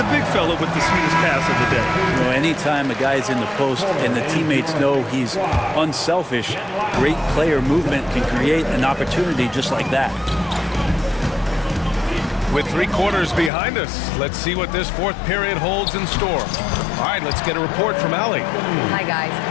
big fella with the sweetest pass of the day. You know, anytime a guy's in the post and the teammates know he's unselfish, great player movement can create an opportunity just like that. With 3 quarters behind us, let's see what this 4th period holds in store. All right, let's get a report from Allie. Hi, guys.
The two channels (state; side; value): drops out; right; at 13.5 s